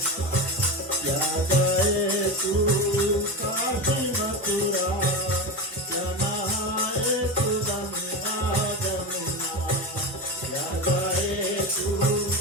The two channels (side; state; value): both; normal; correlation 0.21